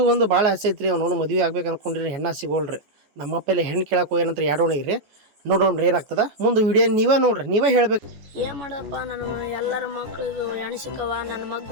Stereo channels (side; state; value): left; late; 14 ms